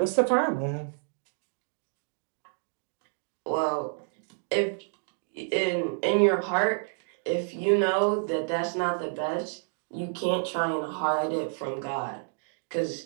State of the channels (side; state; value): left; silent; 58 dB below the other